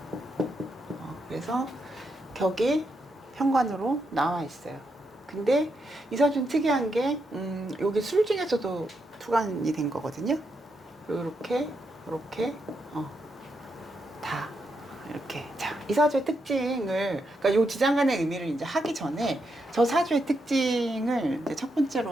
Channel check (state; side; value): normal; both; correlation 0.82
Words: 그래서 격이 현관으로 나와 있어요. 근데 이 사주는 특이한 게 여기 술 중에서도 투관이 된 거거든요. 이렇게 다 이렇게. 자, 이 사주의 특징을, 그러니까 요 지장간의 의미를 이제 하기 전에 저 사주의 특징을 이제 첫